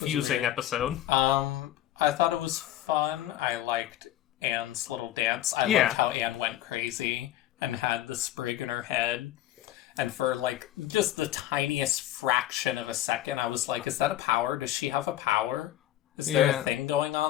episode. I thought it was fun. I liked Anne's little dance. I liked how Anne went crazy and had the sprig in her head. And for, just the tiniest fraction of a second, I was like, is that a power? Does she have a power? Is there a thing going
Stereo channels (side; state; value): right; quieter; 13.3 dB